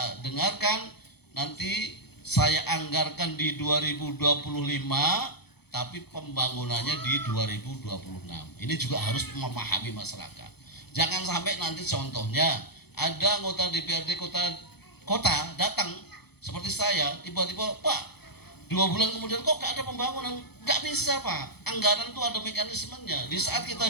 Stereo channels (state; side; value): late; right; 0.97 ms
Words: dengarkan, nanti saya anggarkan di 2025, tapi pembangunannya di 2026. Ini juga harus memahami masyarakat. Jangan sampai nanti contohnya ada anggota DPRD kota datang seperti saya, tiba-tiba Pak 2 bulan kemudian kok gak ada pembangunan. Gak bisa Pak, anggaran itu ada mekanismenya. Di saat